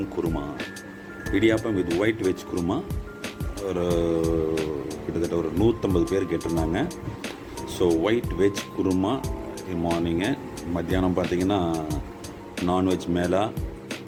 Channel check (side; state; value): both; identical; correlation 1.00